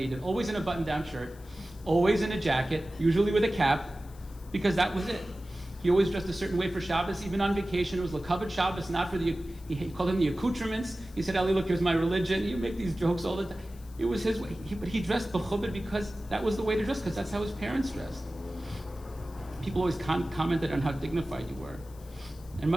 did, always in a button-down shirt, always in a jacket, usually with a cap, because that was it. He always dressed a certain way for Shabbos, even on vacation. It was L'kavod Shabbos, not for he called them the accoutrements. He said, Ali, look, here's my religion. You make these jokes all the time. It was his way. But he dressed b'chubed because that was the way to dress, because that's how his parents dressed. People always commented on how dignified you were. And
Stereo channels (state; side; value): noise; left; hiss, 25 dB below the sound